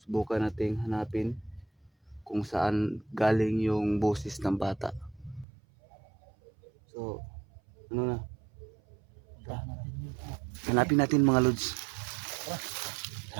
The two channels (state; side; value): drops out; left; at 5.5 s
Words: Subukan nating hanapin kung saan galing yung boses ng bata. So ano na? Hanapin natin mga lods.